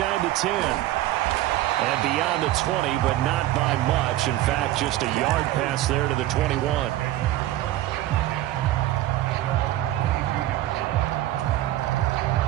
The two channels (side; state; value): left; quieter; 14.9 dB